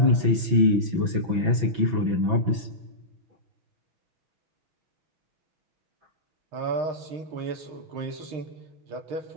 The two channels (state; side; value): late; left; 6.1 ms